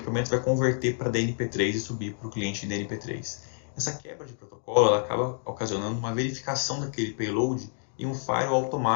vai converter para DNP3 e subir para o cliente em DNP3. Essa quebra de protocolo ela acaba ocasionando uma verificação daquele payload e um firewall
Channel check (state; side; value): silent; right; digital silence